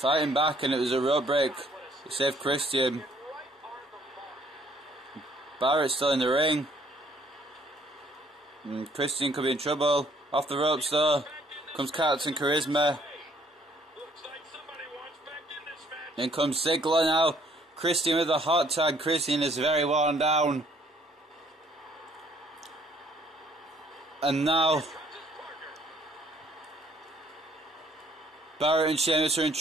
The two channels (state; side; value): normal; both; correlation 0.63